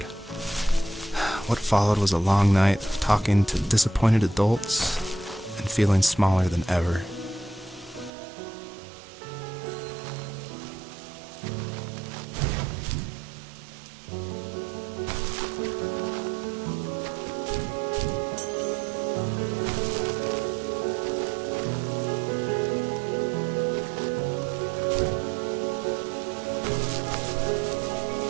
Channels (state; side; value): drops out; left; at 8.1 s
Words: What followed was a long night of talking to disappointed adults and feeling smaller than ever.